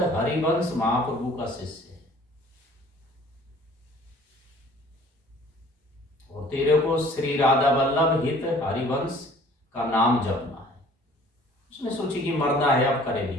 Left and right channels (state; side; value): normal; both; correlation 0.52